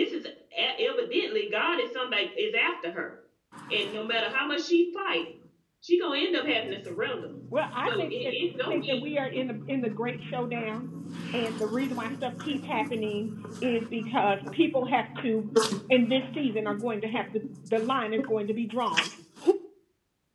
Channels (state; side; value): identical; both; correlation 1.00